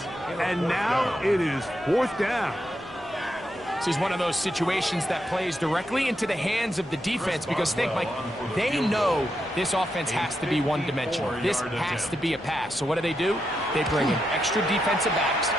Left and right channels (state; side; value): normal; both; correlation 0.84